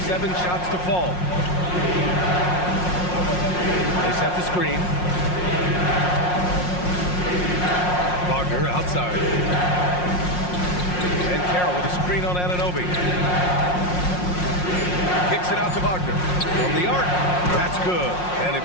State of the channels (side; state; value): right; late; 5.6 ms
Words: 7 shots to fall. They set the screen. Wagner outside. And Carroll with a screen on Anunoby. Kicks it out to Wagner. From the arc. That's good. And